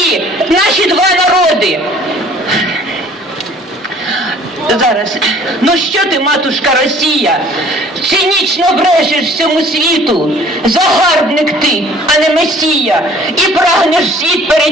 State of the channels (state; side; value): normal; both; correlation 0.53